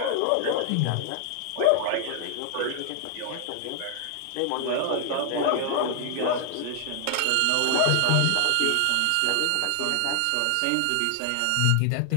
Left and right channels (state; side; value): different; both; correlation 0.00